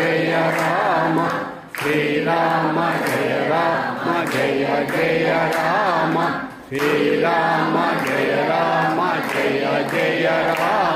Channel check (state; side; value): identical; both; correlation 1.00